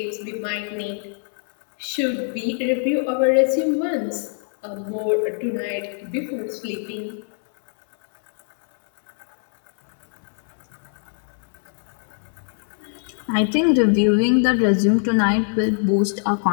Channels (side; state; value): right; silent; 63 dB below the other